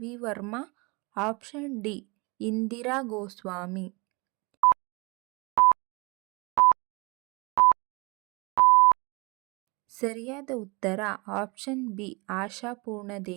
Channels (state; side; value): quieter; left; 27.6 dB